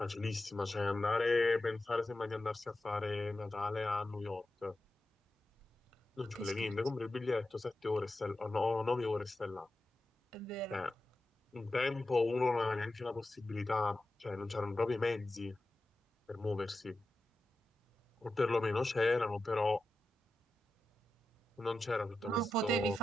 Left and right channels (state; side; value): normal; both; correlation 0.91